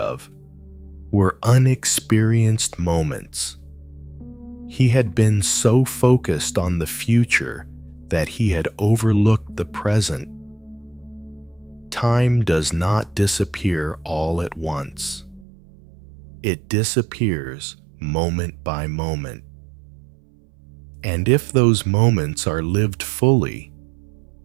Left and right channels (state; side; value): drops out; left; at 15.5 s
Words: were unexperienced moments. He had been so focused on the future that he had overlooked the present. Time does not disappear all at once. It disappears moment by moment. And if those moments are lived fully,